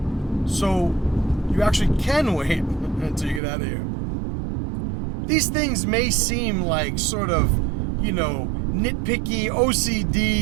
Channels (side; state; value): left; drops out; at 3.4 s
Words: So you actually can wait until you get out of here. These things may seem like sort of, you know, nitpicky,